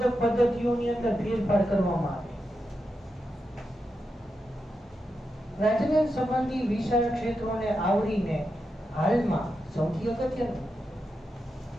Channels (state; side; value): normal; both; correlation 0.87